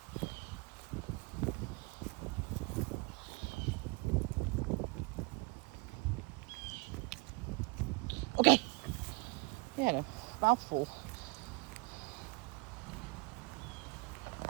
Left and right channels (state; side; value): quieter; left; 26.5 dB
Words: Okay. You had a mouthful.